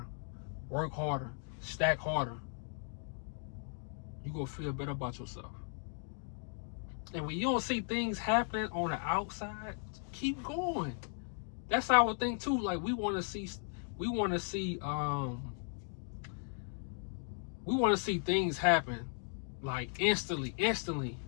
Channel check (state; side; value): silent; right; 53 dB below the other